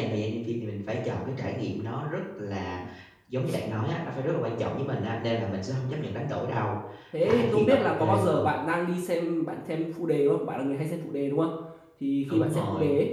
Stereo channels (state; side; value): identical; both; correlation 1.00